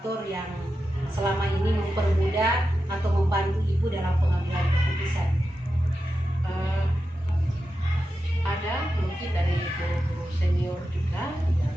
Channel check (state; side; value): normal; both; correlation 0.90